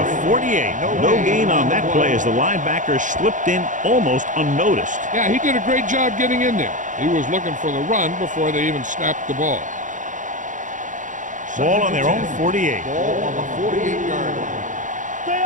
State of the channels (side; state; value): left; late; 0.37 ms